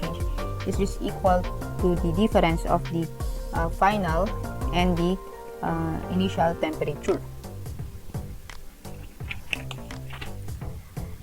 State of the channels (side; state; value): both; identical; correlation 1.00